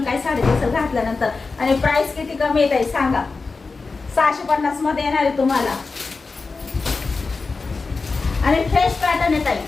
काय साडी दिसेल घातल्यानंतर. आणि प्राइस किती कमी येत आहे सांगा. 650 मध्ये येणार आहे तुम्हाला. आणि फ्रेश पॅटर्न येत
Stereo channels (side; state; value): right; quieter; 4.1 dB